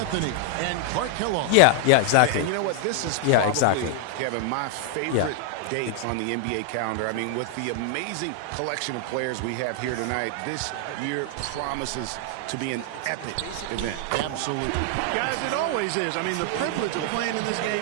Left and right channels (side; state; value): both; different; correlation 0.00